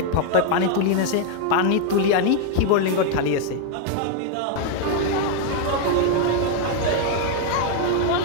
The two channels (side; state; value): both; different; correlation 0.00